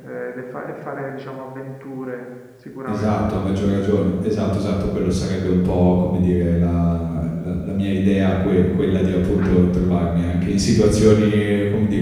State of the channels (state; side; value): identical; both; correlation 1.00